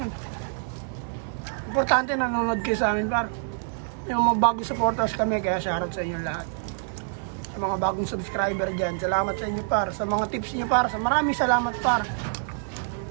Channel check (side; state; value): left; silent; digital silence